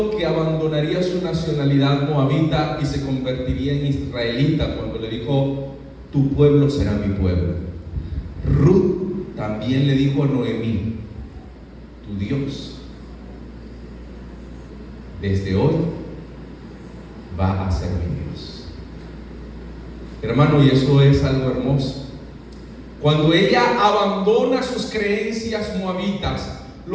que abandonaría su nacionalidad moabita y se convertiría en israelita, cuando le dijo: tu pueblo será mi pueblo. Ruth también le dijo a Noemí: tu Dios desde hoy va a ser mi Dios. Hermano, y eso es algo hermoso. Cuando ella abandona sus creencias moabitas,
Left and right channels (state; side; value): identical; both; correlation 1.00